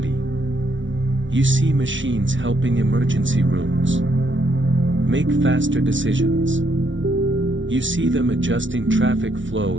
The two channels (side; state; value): left; late; 0.56 ms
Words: You see machines helping emergency rooms make faster decisions. You see them adjusting traffic flow